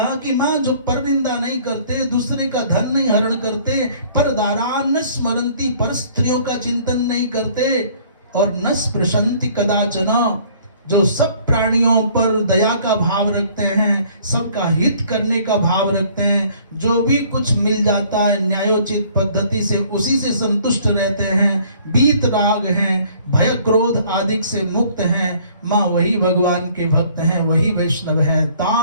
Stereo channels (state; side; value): inverted; both; correlation -0.57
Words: कि मां जो परनिंदा नहीं करते, दूसरे का धन नहीं हरण करते, पर दारान स्मरंती, पर स्त्रियों का चिंतन नहीं करते, और न स्पृशन्ति कदाचन, जो सब प्राणियों पर दया का भाव रखते हैं, सबका हित करने का भाव रखते हैं, जो भी कुछ मिल जाता है न्यायोचित पद्धति से उसी से संतुष्ट रहते हैं, बीत राग हैं, भय क्रोध आदि से मुक्त हैं, माँ वही भगवान के भक्त हैं, वही वैष्णव हैं।